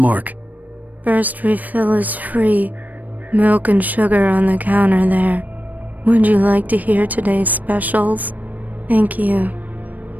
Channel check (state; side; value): late; left; 0.080 ms